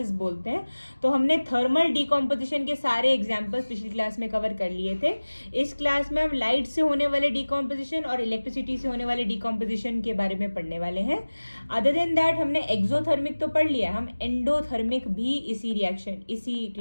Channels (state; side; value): inverted; both; correlation -1.00